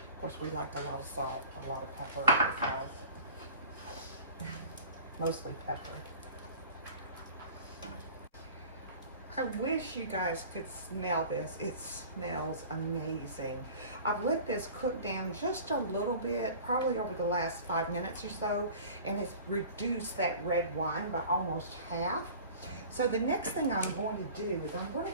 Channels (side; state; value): both; inverted; correlation -0.42